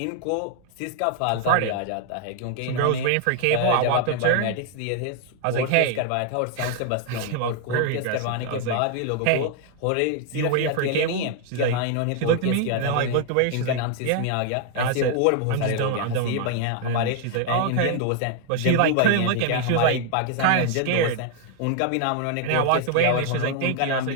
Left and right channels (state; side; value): different; both; correlation 0.00